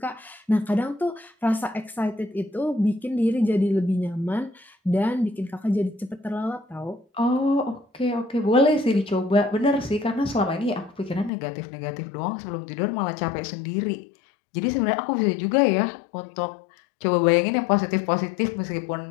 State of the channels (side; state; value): right; drops out; at 11.3 s